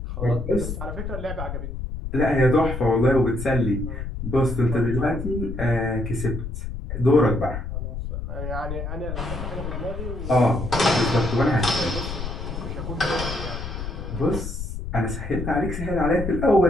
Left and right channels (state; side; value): noise; left; rumble, 6 dB below the sound